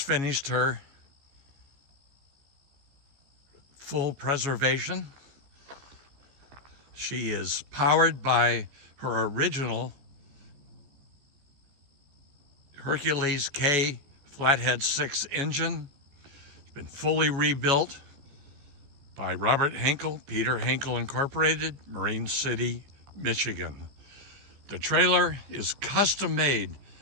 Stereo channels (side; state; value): left; late; 15 ms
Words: finished her full preservation. She is powered by her original Hercules K Flathead 6 engine. It's been fully rebuilt by Robert Henkel, Peter Henkel Incorporated, Marine City, Michigan. The trailer is custom made